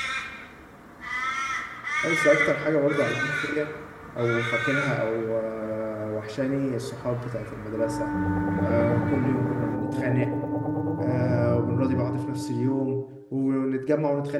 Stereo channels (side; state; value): both; identical; correlation 1.00